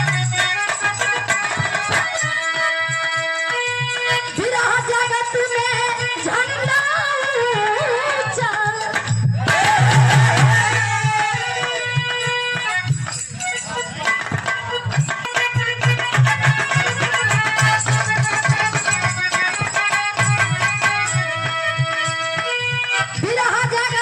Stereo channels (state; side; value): identical; both; correlation 1.00